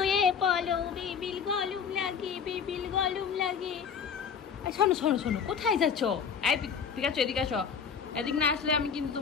পড়ো, বিবিল গরম লাগে, বিবিল গরম লাগে। শোনো শোনো শোনো, কোথায় যাচ্ছ? এই পিকাচু, এদিকে আসো। এদিক না আসলে আমি কিন্তু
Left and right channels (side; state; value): right; quieter; 6.7 dB